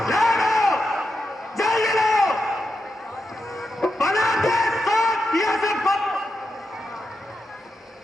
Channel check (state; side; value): normal; both; correlation 0.87